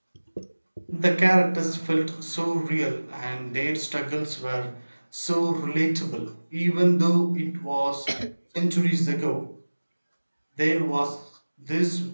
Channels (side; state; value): both; inverted; correlation -1.00